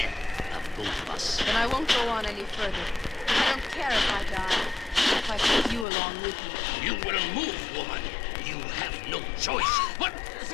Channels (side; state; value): right; drops out; at 5.9 s